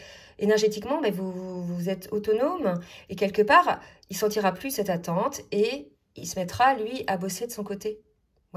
énergétiquement, mais vous êtes autonome, et quelque part, il sentira plus cette attente, et il se mettra, lui, à bosser de son côté,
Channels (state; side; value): identical; both; correlation 1.00